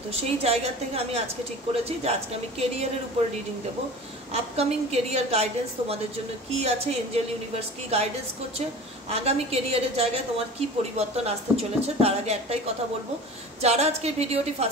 তো সেই জায়গা থেকে আমি আজকে ঠিক করেছি যে আজকে আমি কেরিয়ারের উপর রিডিং দেবো। আপকামিং কেরিয়ার গাইডেন্স তোমাদের জন্য কি আছে, এঞ্জেল ইউনিভার্স কি গাইডেন্স করছে, আগামী কেরিয়ারের জায়গায় তোমার কি পরিবর্তন আসতে চলেছে। তার আগে একটাই কথা বলবো, যারা আজকে ভিডিওটি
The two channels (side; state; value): both; normal; correlation 0.38